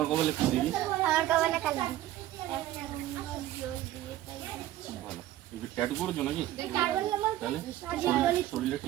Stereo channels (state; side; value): quieter; left; 13.9 dB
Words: কপালে কি দেখি? ভালো, ট্যাটু করেছো নাকি? তাহলে শরীরে